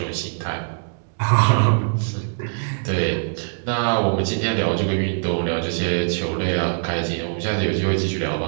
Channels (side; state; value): left; silent; digital silence